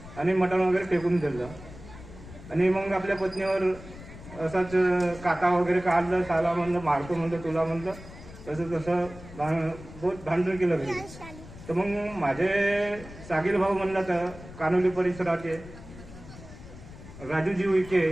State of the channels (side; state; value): left; noise; rumble, 16 dB below the sound